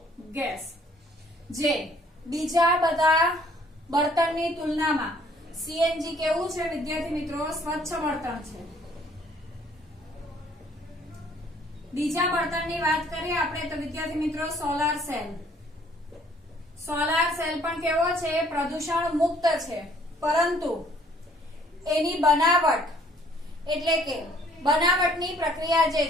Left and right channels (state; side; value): normal; both; correlation 0.60